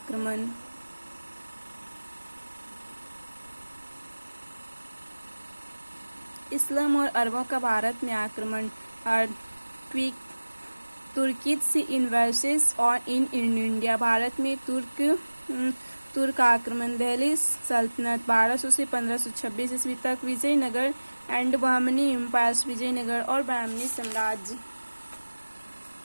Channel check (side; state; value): both; inverted; correlation -1.00